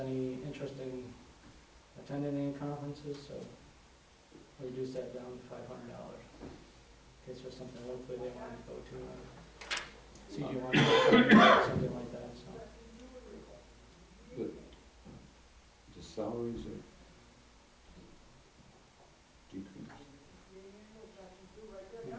interest in attending any conferences, so we reduced that down to $500 in case there's something locally they wanted to go to, CG1 or something like that, so. But the salaries are decreased.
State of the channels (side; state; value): both; identical; correlation 1.00